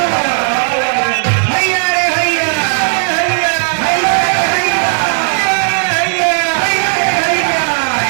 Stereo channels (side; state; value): left; silent; 64 dB below the other